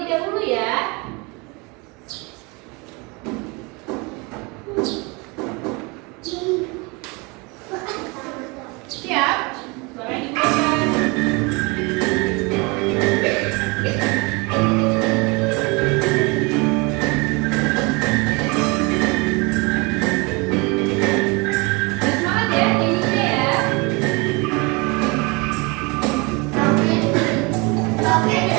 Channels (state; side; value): quieter; left; 28.0 dB